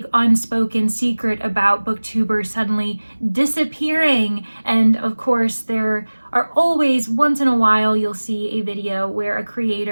unspoken secret about booktubers suddenly disappearing? And of course, there are always, once in a while, you'll see a video where a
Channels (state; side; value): inverted; both; correlation -1.00